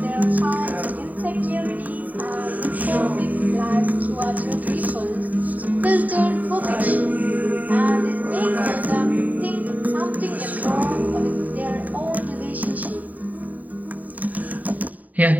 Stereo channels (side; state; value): left; late; 0.076 ms